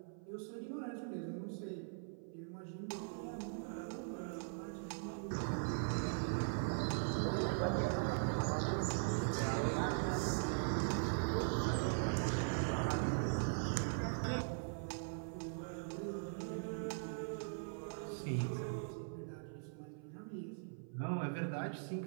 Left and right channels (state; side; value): silent; left; 50 dB below the other